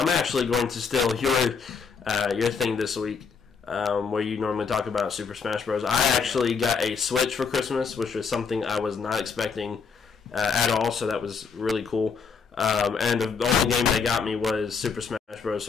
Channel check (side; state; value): right; quieter; 5.7 dB